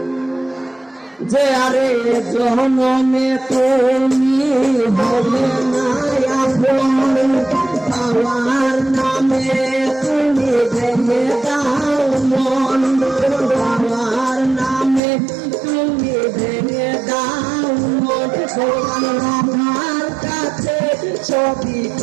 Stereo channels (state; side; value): drops out; left; at 15.0 s